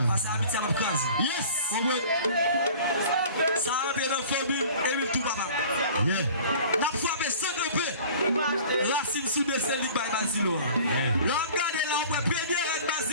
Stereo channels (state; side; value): inverted; both; correlation -0.45